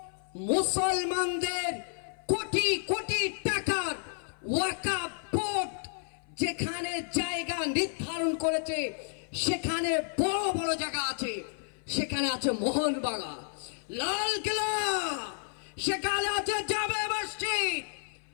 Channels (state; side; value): silent; right; 57 dB below the other